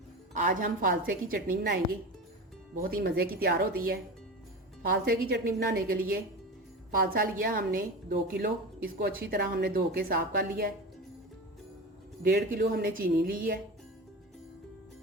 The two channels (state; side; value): normal; both; correlation 0.28